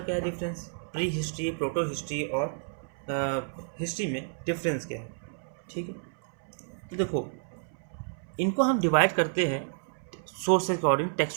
क्या है, difference, prehistory, protohistory और हिस्ट्री में डिफरेंस क्या है। ठीक है, तो देखो, इनको हम डिवाइड करते हैं सोर्स के अकॉर्डिंग,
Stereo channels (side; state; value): left; silent; 58 dB below the other